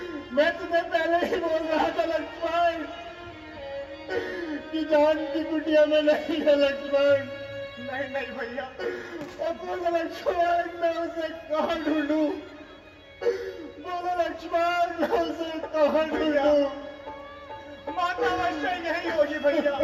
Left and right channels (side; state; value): both; identical; correlation 1.00